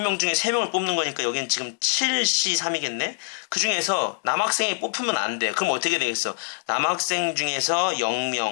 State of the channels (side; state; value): right; silent; 57 dB below the other